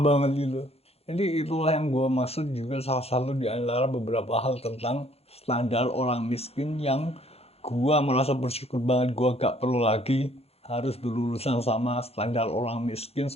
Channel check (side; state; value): right; late; 0.29 ms